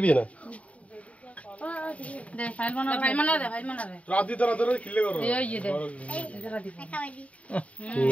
না দে ফাইল বানা দে রাতি তোরা তোরা খিলে করো ये दे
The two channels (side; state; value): right; late; 0.066 ms